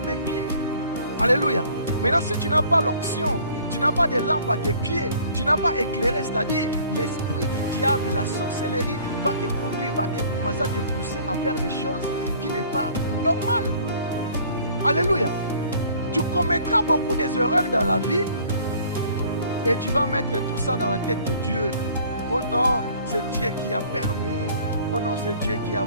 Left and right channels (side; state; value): both; inverted; correlation -0.53